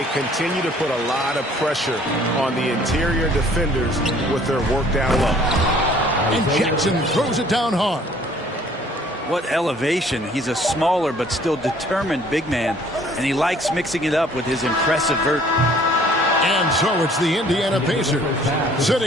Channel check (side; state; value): both; normal; correlation 0.56